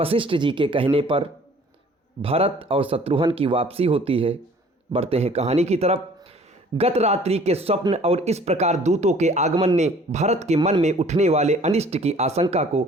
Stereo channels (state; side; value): normal; both; correlation 0.53